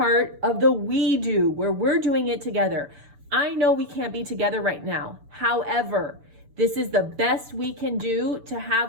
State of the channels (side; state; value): left; late; 6.9 ms